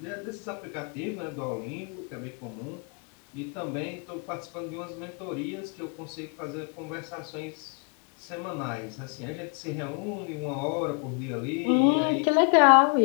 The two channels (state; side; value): quieter; right; 39.0 dB